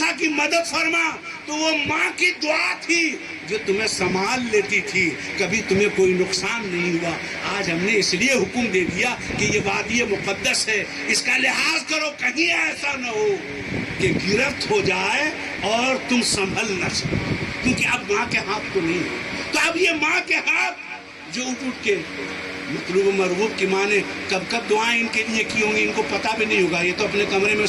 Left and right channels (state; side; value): identical; both; correlation 1.00